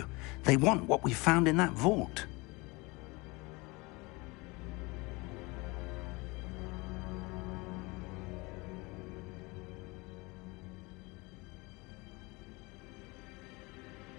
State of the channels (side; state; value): right; quieter; 25.2 dB